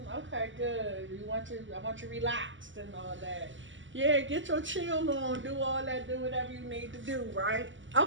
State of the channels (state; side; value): late; left; 0.55 ms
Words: okay, good. I want you relaxed and all that. Yeah, get your chill on, do all that, do whatever you need to do, right?